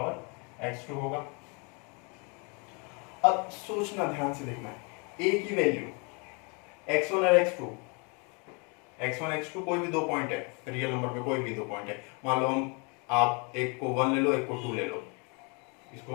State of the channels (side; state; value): right; quieter; 33.1 dB